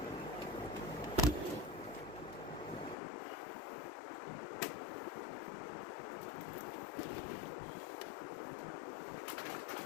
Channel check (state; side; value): drops out; right; at 3.0 s